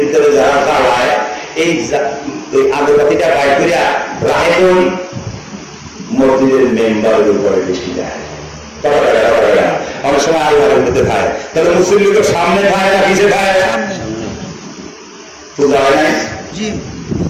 ভিতরে যারা জ্বালায়, এই আগরবাতিটা বাইর করে রায় মসজিদের মেম্বারের উপরে বেশি যায়। অনেক সময় আল্লাহর মধ্যে খায়, তাহলে মুসলিম তো সামনে খায় না পিছিয়ে খায়? পূজা হয় নাই,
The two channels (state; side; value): identical; both; correlation 1.00